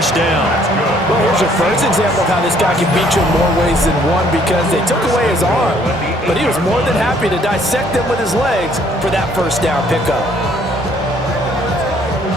down. Well, here's your first example of how this guy can beat you in more ways than one, because they took away his arm, but he was more than happy to dissect them with his legs for that first down pickup.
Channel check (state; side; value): normal; both; correlation 0.63